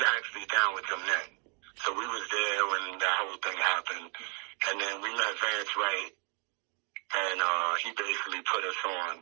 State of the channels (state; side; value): quieter; left; 36.1 dB